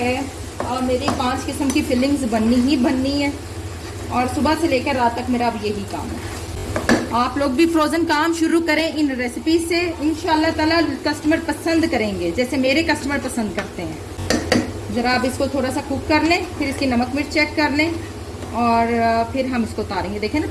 मेरी 5 किस्म की फिलिंग्स बननी ही बननी है, और सुबह से लेकर रात तक मेरा अब यही काम है। आप लोग भी फ्रोज़न काम शुरू करें इन रेसिपी से, इंशाल्लाह ताला कस्टमर पसंद करेंगे जैसे मेरे कस्टमर पसंद करते हैं। ज़रा आप इसको थोड़ा सा कुक कर लें, फिर इसकी नमक मिर्च चेक कर लें और फिर हम इसको उतारेंगे। देखें ना,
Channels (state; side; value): identical; both; correlation 1.00